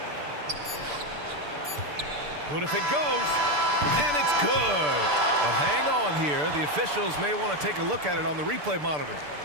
Good if it goes, and it's good. But hang on here. The officials may want to take a look at it on the replay monitor.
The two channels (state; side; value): late; left; 6.8 ms